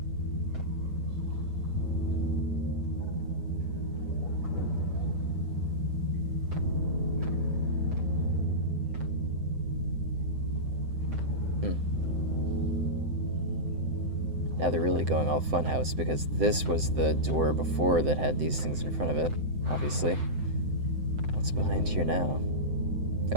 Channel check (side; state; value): left; late; 7.8 ms